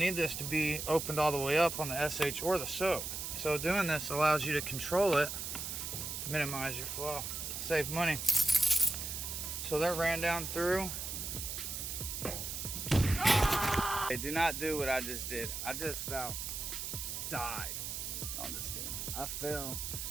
this to be opened all the way up on the SH or the soap. So doing this allows you to control it, minimize your flow, save money. So that ran down through. Hey, do not do what I just did. I just about died. No, I'm just kidding. I fell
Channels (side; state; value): right; noise; hiss, 5 dB below the sound